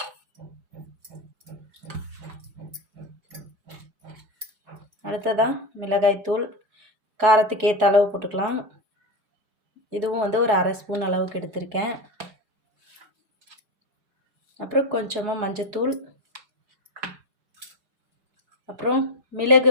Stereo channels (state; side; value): late; left; 4.7 ms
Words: அடுத்ததாக மிளகாய்த்தூள் காரத்துக்கு ஏற்ற அளவு போட்டுக்கலாம். இதுவும் வந்து ஒரு அரை ஸ்பூன் அளவுக்கு எடுத்திருக்கேன். அப்புறம் கொஞ்சமாக மஞ்சத்தூள், அப்புறம் மிளகு